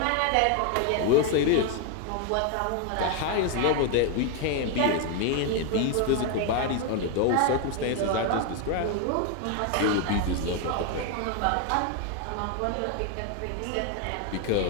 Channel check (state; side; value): different; both; correlation 0.01